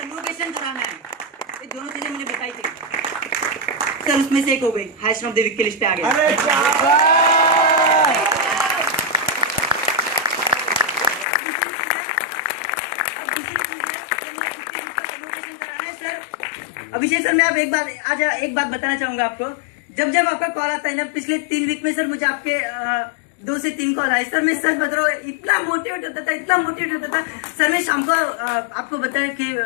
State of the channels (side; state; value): right; drops out; at 11.2 s